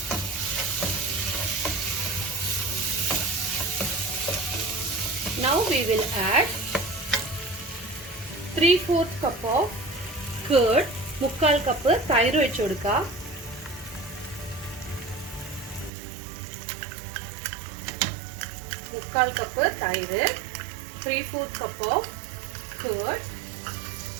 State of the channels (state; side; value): drops out; left; at 15.9 s